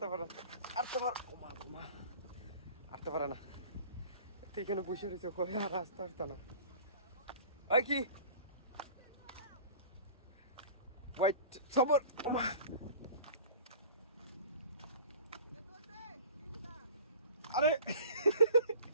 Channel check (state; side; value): inverted; both; correlation -0.43